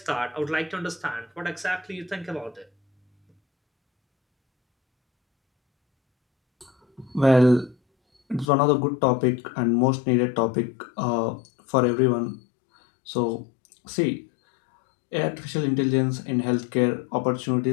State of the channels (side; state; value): right; drops out; at 8.5 s